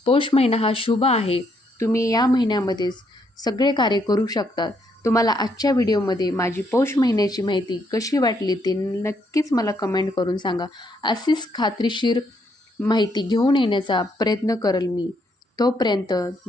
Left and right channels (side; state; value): both; normal; correlation 0.73